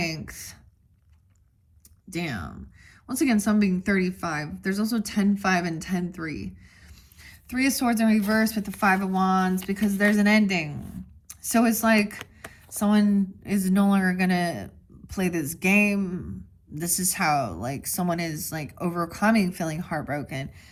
Damn. Once again, some being 35. There's also 10-5 and 10-3. 3 of Swords in reverse with the 5 of Wands, because there's an ending. So it's like someone is no longer going to play this game. This is how, like, someone is, like, overcoming feeling heartbroken.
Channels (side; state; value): both; identical; correlation 1.00